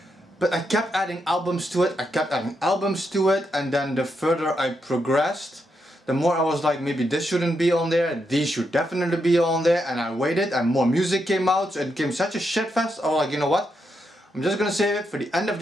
But I kept adding albums to it, and then the further I progressed, the more I was like, maybe this shouldn't be on there, these should definitely be on there, and I waited and more music came out, so it became such a shitfest. I was like, you know what? I'm just gonna save it for the end of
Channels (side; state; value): both; normal; correlation 0.82